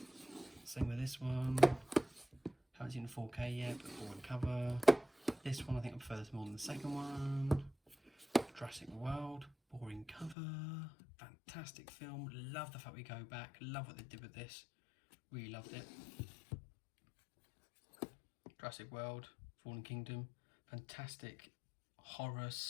Same with this one. Haven't seen the 4K yet, but boring cover. This one I think I prefer this more than the second one. Jurassic World, boring cover. Fantastic film, love the fact we go back, love what they did with this. Really loved it. Jurassic World, Fallen Kingdom, fantastic horror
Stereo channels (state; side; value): drops out; right; at 10.4 s